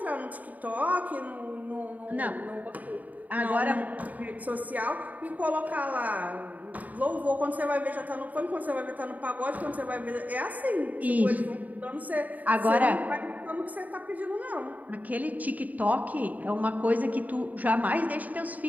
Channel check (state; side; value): late; left; 0.075 ms